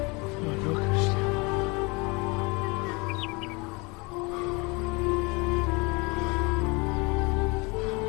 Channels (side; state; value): right; quieter; 27.9 dB